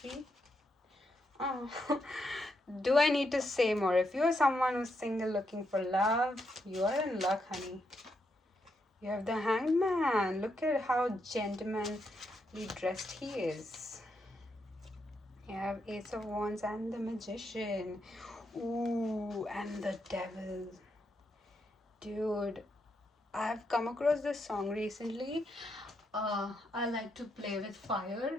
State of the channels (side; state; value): both; normal; correlation 0.81